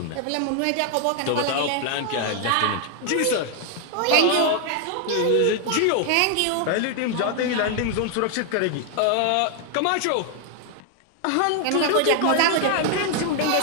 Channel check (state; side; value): different; both; correlation 0.00